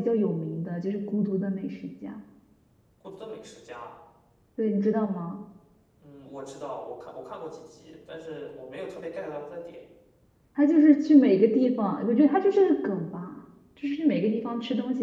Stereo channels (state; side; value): identical; both; correlation 1.00